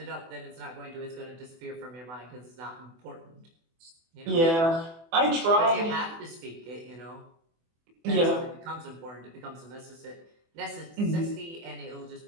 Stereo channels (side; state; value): left; late; 24 ms